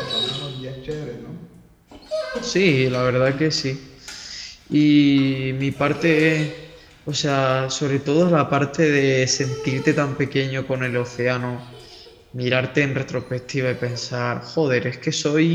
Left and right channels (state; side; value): identical; both; correlation 1.00